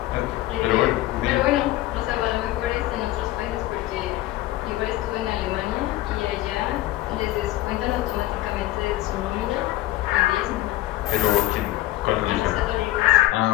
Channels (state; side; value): quieter; right; 16.0 dB